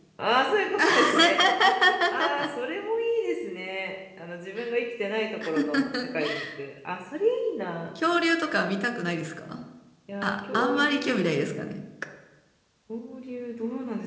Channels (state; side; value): identical; both; correlation 1.00